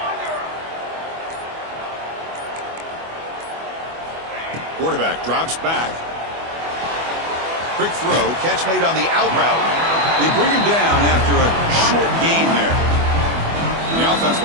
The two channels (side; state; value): left; late; 24 ms